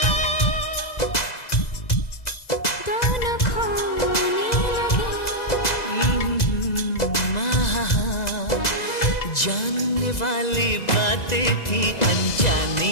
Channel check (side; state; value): right; late; 2.0 ms